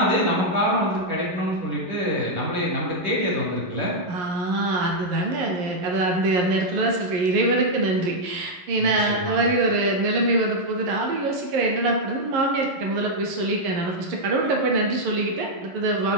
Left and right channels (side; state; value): left; late; 11 ms